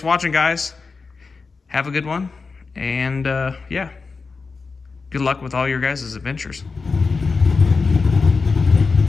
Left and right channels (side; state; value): right; quieter; 4.5 dB